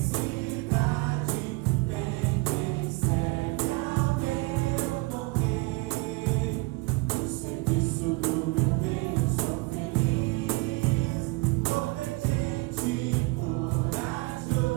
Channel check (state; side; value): quieter; left; 23.6 dB